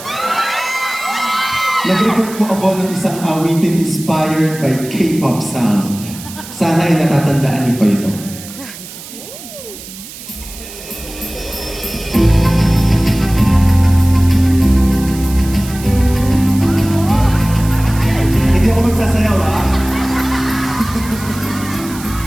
nag-record po ako ng isang awitin inspired by K-pop sound. Sana ay natatandaan niyo pa ito.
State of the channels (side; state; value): right; noise; hiss, 14 dB below the sound